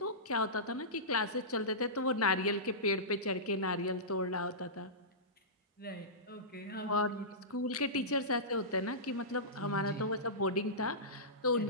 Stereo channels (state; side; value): normal; both; correlation -0.19